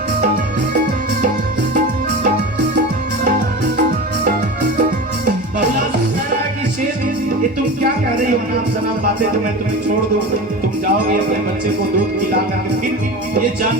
ये तुम क्या कह रही हो, नाम सनाम बातें तो मैं तुम्हें छोड़ दूं, तुम जाओगे अपने बच्चे को दूध पिला करके, फिर ये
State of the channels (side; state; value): both; normal; correlation 0.30